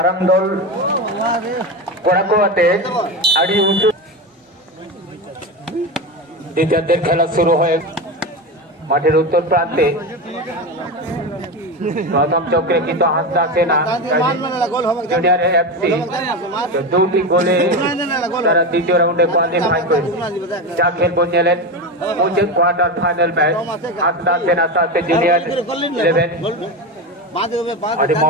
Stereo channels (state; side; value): normal; both; correlation 0.19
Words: दल कोड़ा को आते आड़ी उसु द्वितीय खेला शुरू है माठेर उत्तर प्रांते प्रथम चक्रे কিন্তু হাসদা সেনা জুনিয়র এফসি দুটি গোলে তারা দ্বিতীয় রাউন্ডে কোয়ালিফাই করে যা খেল বঞ্জেলেন মুঝে কোয়ার্টার ফাইনাল ম্যাচ হাসদা সেনা সাথে জুনিয়র 11 और